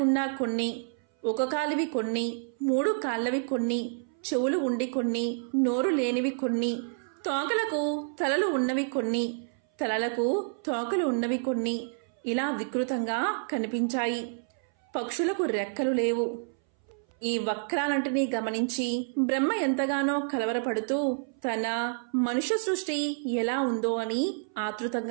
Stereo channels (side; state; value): left; silent; 58 dB below the other